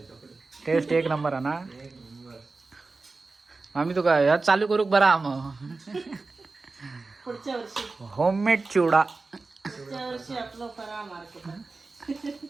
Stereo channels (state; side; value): quieter; left; 3.7 dB